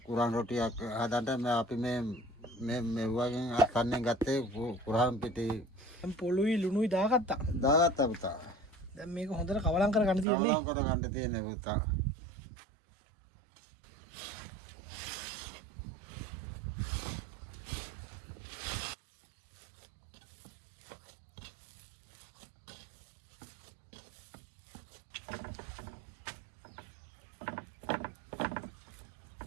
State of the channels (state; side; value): drops out; left; at 10.2 s